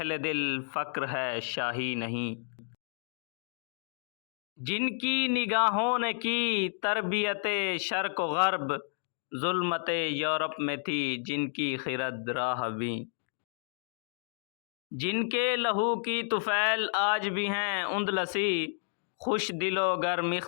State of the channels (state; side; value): silent; right; digital silence